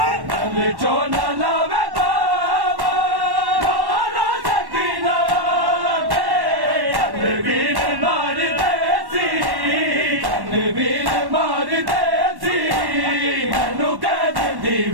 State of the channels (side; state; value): left; late; 1.1 ms